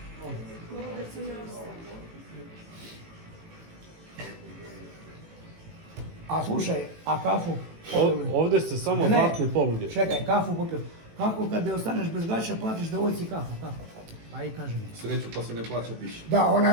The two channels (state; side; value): late; left; 18 ms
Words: A slušaj, a kafu? Ovdje se samo Ne. zlatne poluge. Čekaj, kafu popio. Kako kad ostaneš bez gaća, platiš devojci kafu, kako? Pa i kaži mi. Sreću pa se ne plaća piše. Da,